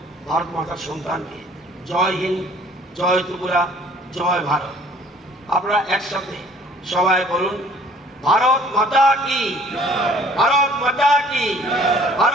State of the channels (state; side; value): normal; both; correlation 0.54